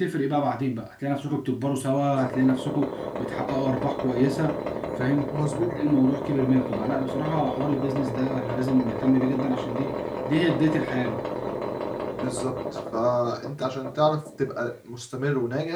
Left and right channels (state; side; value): identical; both; correlation 1.00